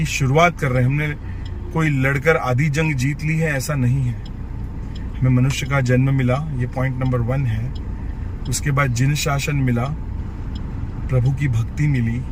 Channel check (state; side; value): identical; both; correlation 1.00